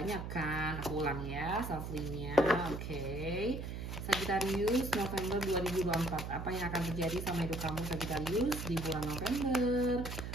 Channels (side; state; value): right; noise; hum, 6 dB below the sound